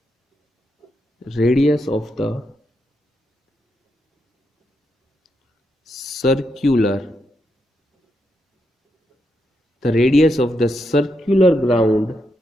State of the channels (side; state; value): both; normal; correlation 0.82